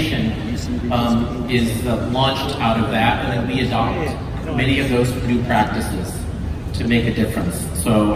is launched out of that, and then we adopt many of those new practices to make a difference. So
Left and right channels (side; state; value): both; identical; correlation 1.00